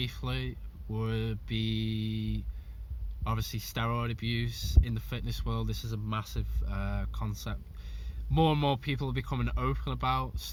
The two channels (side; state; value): both; identical; correlation 1.00